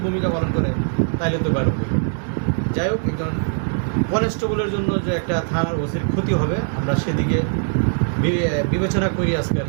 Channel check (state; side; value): silent; left; digital silence